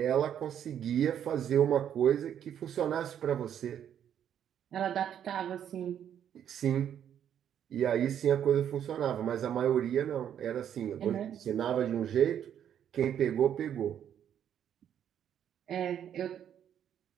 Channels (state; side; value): quieter; left; 9.5 dB